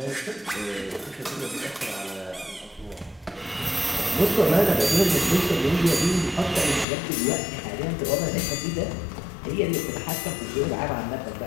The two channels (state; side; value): drops out; right; at 6.9 s